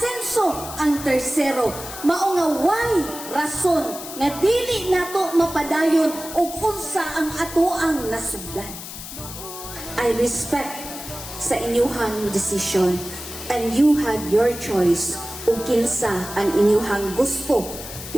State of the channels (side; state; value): left; noise; hiss, 11 dB below the sound